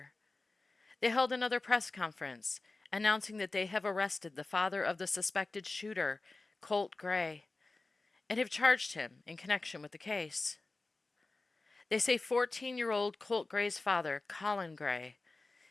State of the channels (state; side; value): quieter; right; 3.4 dB